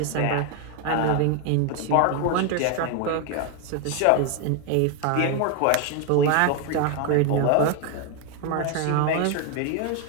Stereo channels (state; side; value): different; both; correlation 0.01